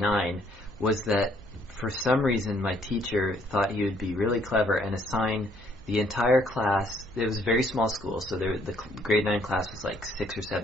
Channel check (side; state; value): left; noise; hum, 27 dB below the sound